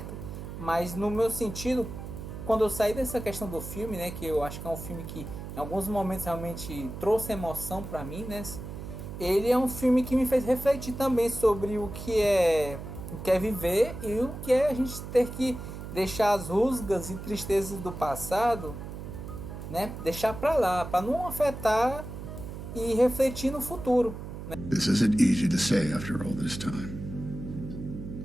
Mas no meu sentido, quando eu saí dessa questão do filme, né, que eu acho que é um filme que em alguns momentos realmente trouxe emoção para mim, né, ele é um filme que me fez refletir também sobre o que é viver e o que é a gente ter que deixar as rusgas e tristezas do passado, né, deixar para lá, para não afetar e refletir no futuro. Né? This isn't easy to say after all this time,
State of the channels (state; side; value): noise; right; hum, 9 dB below the sound